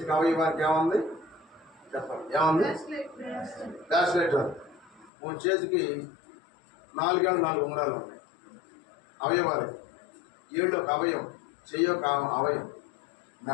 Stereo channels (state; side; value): drops out; right; at 5.1 s